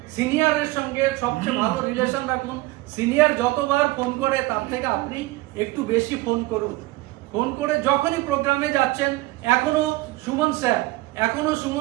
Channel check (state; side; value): quieter; left; 20.0 dB